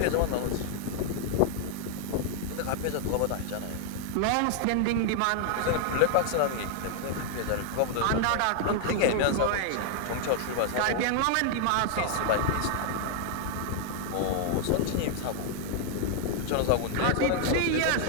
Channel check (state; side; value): different; both; correlation 0.00